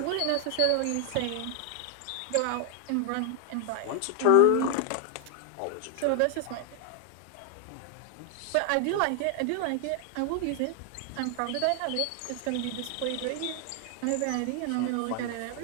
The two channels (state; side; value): different; both; correlation 0.00